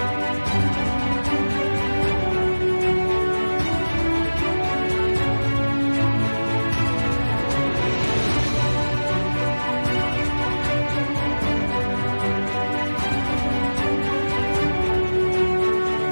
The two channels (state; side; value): inverted; both; correlation -1.00